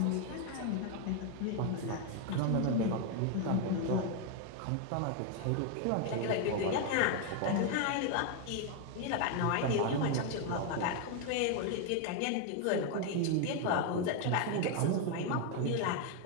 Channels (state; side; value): different; both; correlation 0.01